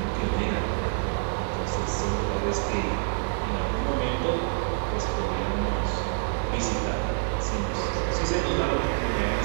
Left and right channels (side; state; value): left; silent; digital silence